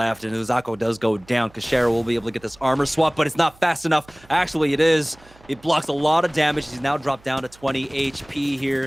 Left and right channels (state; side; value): noise; right; hum, 27 dB below the sound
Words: and Uzako does go down. Kashera will be able to get this armor swap, but it's not fast enough. Actually, it is. It blocks a lot of damage. He's now dropped down to 20 HP